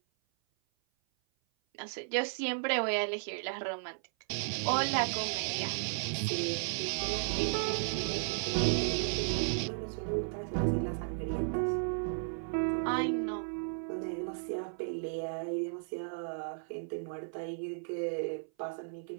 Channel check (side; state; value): left; silent; 55 dB below the other